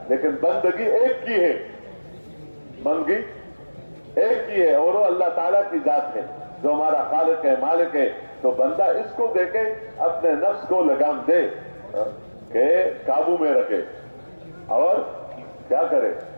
لیکن بندگی ایک کی ہے، بندگی ایک کی ہے اور وہ اللہ تعالیٰ کی ذات ہے جو ہمارا خالق ہے، مالک ہے. تو بندہ اس کو دیکھے، اپنے نفس کو لگام دے کہ قابو میں رکھے اور کیا کرے،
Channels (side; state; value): both; inverted; correlation -1.00